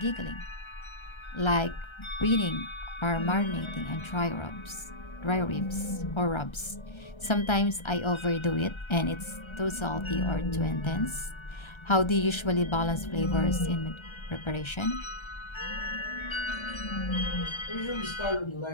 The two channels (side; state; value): right; late; 1.3 ms